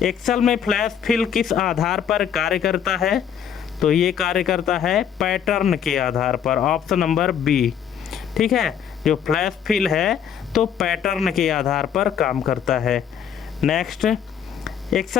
एक्सेल में फ्लैश फिल किस आधार पर कार्य करता है? तो ये कार्य करता है पैटर्न के आधार पर, ऑप्शन नंबर बी, ठीक है। जो फ्लैश फिल है तो पैटर्न के आधार पर काम करता है। नेक्स्ट,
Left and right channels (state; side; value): quieter; right; 8.5 dB